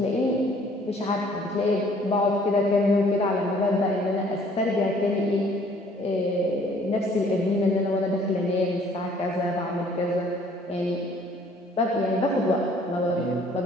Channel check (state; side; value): normal; both; correlation 0.58